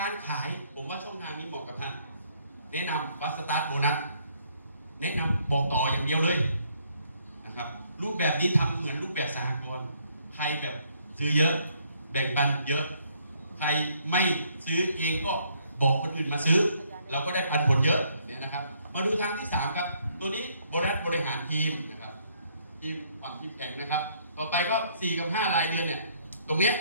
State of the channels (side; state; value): both; inverted; correlation -0.67